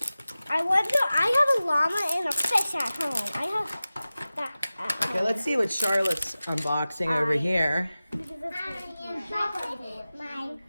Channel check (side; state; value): both; inverted; correlation -0.96